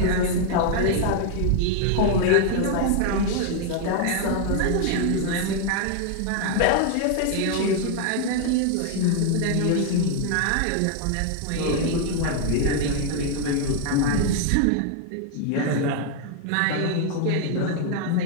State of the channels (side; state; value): both; different; correlation 0.00